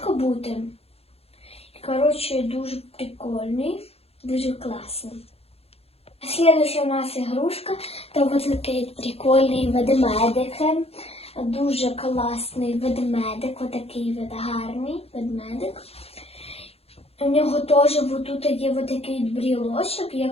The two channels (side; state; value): right; late; 0.29 ms